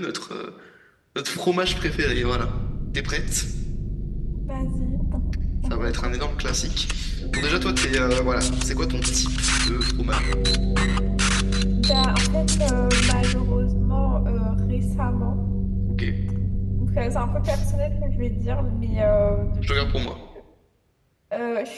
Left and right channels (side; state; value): both; identical; correlation 1.00